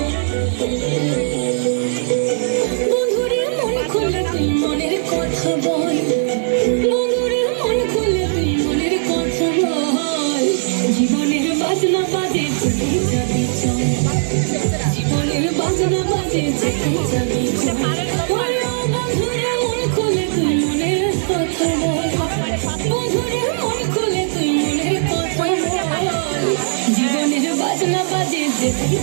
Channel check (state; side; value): silent; left; 67 dB below the other